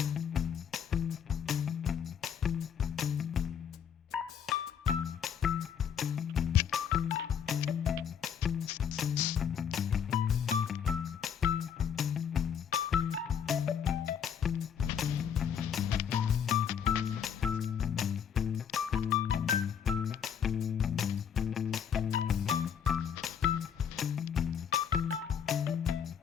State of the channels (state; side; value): quieter; right; 7.9 dB